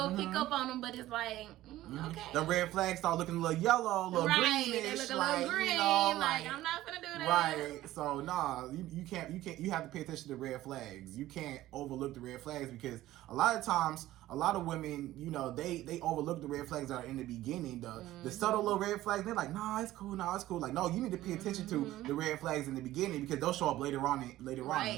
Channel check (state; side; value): quieter; left; 15.3 dB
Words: pick up on them, but it's like, okay. The red flags start looking a little yellow, a little greenish. They look a like, little green, you know, like I'm not gonna do that. Right, so you can't. You have to pay attention to the red flags. You can't overlook the red flags, because a lot of times, a lot of women, you know, they overlook the red flags that are in the beginning, the subtle little red flags. They're like, nah, it's cool. Like, no, you need to pay attention to the red flags in the beginning, because they'll show up later on. Right,